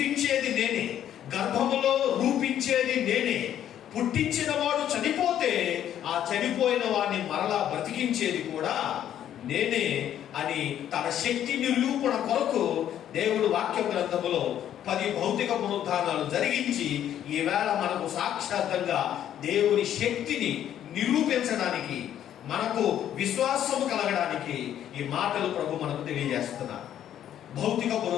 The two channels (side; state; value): right; quieter; 10.7 dB